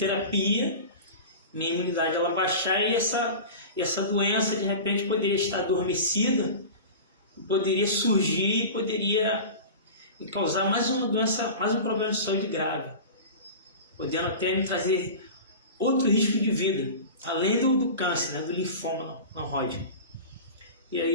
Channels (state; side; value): inverted; both; correlation -0.32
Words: minha imunidade ela baixar, e essa doença de repente poderia estar adormecida, poderia surgir e poderia causar mais uma doença, mais um problema de saúde grave, podendo até me trazer outro risco de vida, além do câncer, né, do linfoma não Hodgkin. E